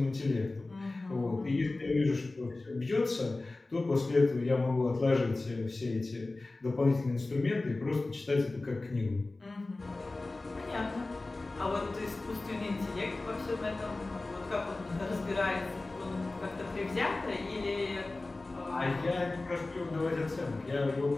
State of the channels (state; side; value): quieter; right; 3.2 dB